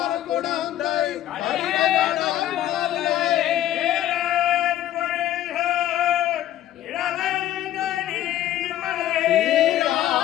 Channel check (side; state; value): right; quieter; 12.7 dB